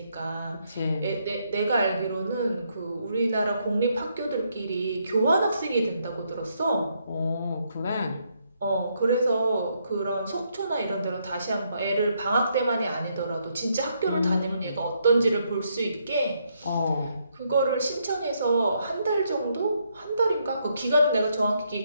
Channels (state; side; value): inverted; both; correlation -0.75